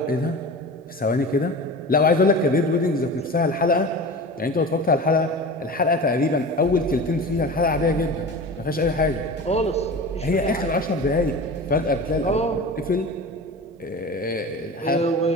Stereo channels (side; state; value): both; normal; correlation 0.33